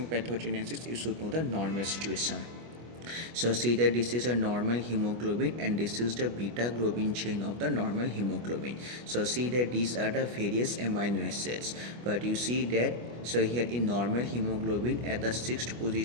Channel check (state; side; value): late; left; 25 ms